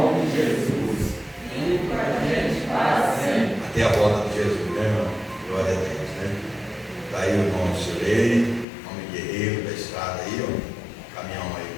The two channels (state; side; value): drops out; right; at 8.7 s